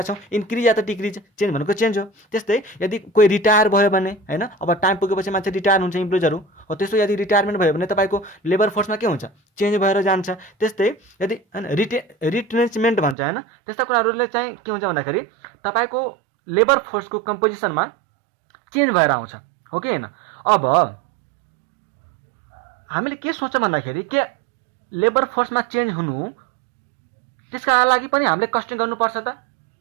छौँ? इन्क्रिज या त डिक्रिज, चेन्ज भनेको चेन्ज हो। त्यस्तै यदि कोही रिटायर भयो भने हैन, अब टाइम पुगेपछि मान्छे रिटायर हुन्छ इम्प्लोइजहरू हो। त्यस्तो यदि रिटायरमेन्ट भयो भने तपाईँको लेबर फोर्समा के हुन्छ? चेन्ज भएर जान्छ। त्यस्तै यदि हैन रिट्रेन्चमेन्ट भन्छ हैन, त्यस्ता कुराहरूले चाहिँ के हुन्छ भन्दाखेरि तपाईँको लेबर फोर्सको कम्पोजिसनमा चेन्ज भएर आउँछ, हो कि होइन? अब हामीले के सोच्छौँ भन्दाखेरि के लेबर फोर्समा चेन्ज हुनु त्यसका लागि पनि हामीले कस्टिङ गर्नुपर्छ त।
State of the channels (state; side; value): drops out; left; at 13.2 s